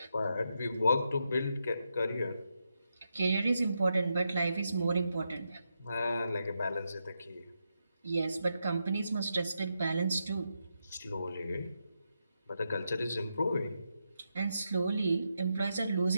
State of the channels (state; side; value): inverted; both; correlation -0.84